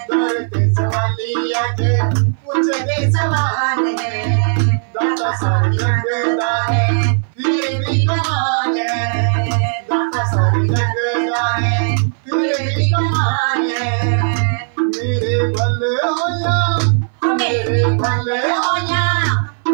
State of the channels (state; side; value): silent; left; 59 dB below the other